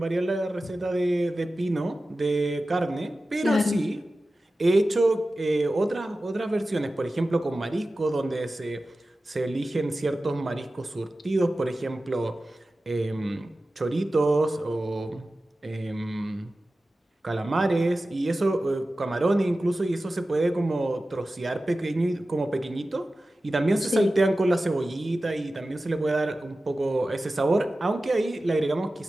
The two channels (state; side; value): normal; both; correlation 0.95